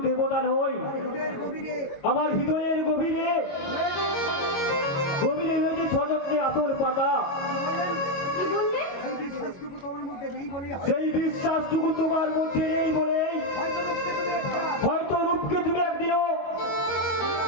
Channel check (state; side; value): late; right; 22 ms